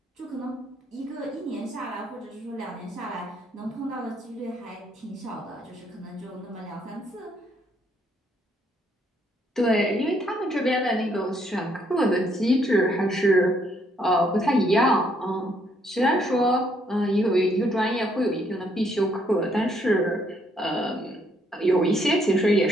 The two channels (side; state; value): both; normal; correlation 0.70